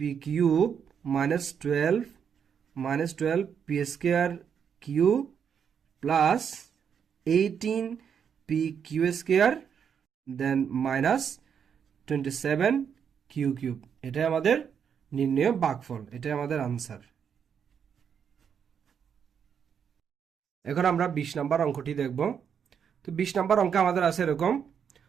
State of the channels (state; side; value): quieter; left; 7.5 dB